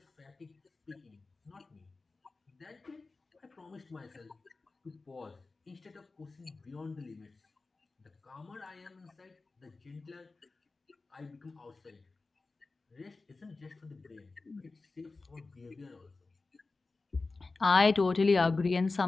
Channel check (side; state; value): right; quieter; 3.7 dB